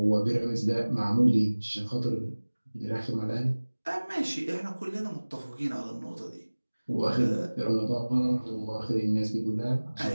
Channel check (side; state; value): both; inverted; correlation -1.00